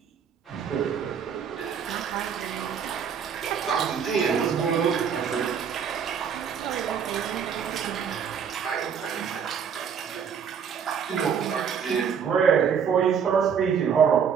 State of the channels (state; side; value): quieter; left; 7.3 dB